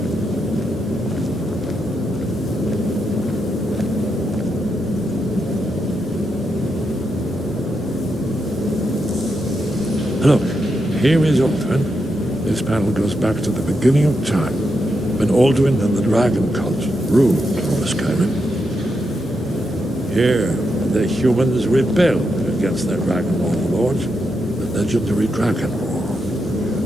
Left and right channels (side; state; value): both; normal; correlation 0.84